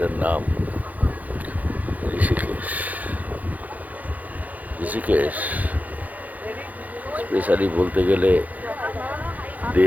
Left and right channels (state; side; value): late; left; 0.079 ms